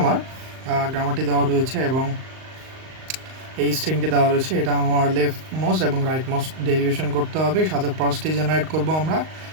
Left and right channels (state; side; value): late; left; 38 ms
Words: গ্রামারটি দেওয়া রয়েছে এবং এই স্ট্রিংটি দেওয়া রয়েছে। এটা আমার লেফট মোস্ট এবং রাইট মোস্ট ডেরিভেশন করতে হবে, সাথে পার্সটি জেনারেট করব আমরা